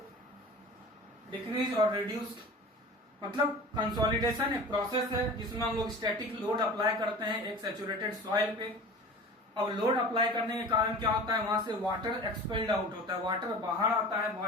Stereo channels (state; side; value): normal; both; correlation 0.38